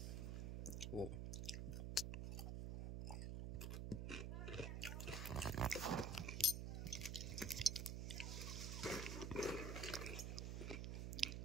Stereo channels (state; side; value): noise; right; hum, 1 dB below the sound